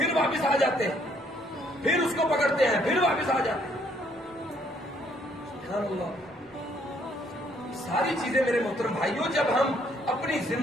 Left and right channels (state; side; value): normal; both; correlation 0.67